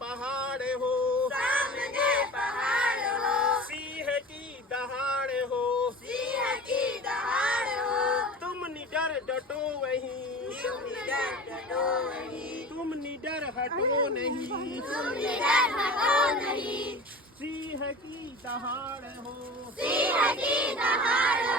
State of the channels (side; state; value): both; normal; correlation 0.36